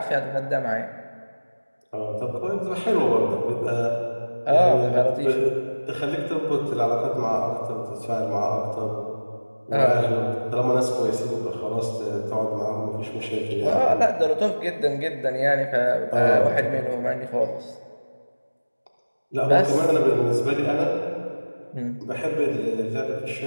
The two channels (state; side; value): inverted; both; correlation -1.00